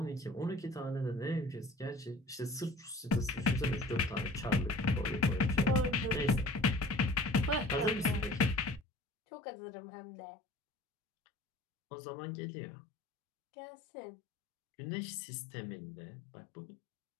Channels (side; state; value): right; drops out; at 8.8 s